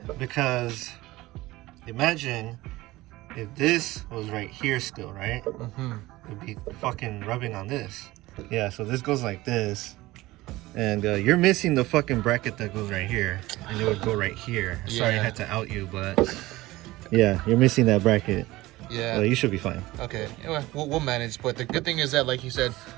because imagine if this was right here still, right? It'd be fucking rubbing on this. Yeah, so this goes like this. And you're missing the fucking bracket that goes right here. And it would go right here. Yeah. Sorry I had to out you, but yeah, you're missing that bracket. Yeah. Well, you should be fine. Okay. Anyway, we'll manage. But the good thing is that, like you said,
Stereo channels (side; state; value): left; quieter; 18.7 dB